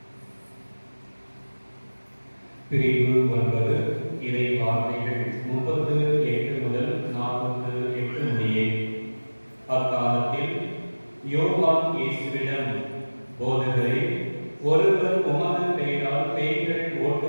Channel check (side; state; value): both; inverted; correlation -1.00